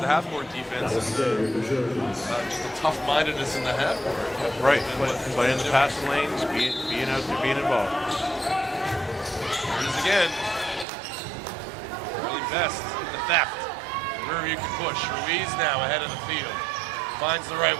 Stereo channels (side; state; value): left; drops out; at 10.9 s